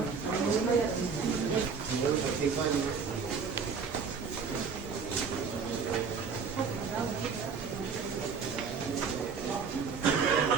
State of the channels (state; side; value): quieter; left; 5.6 dB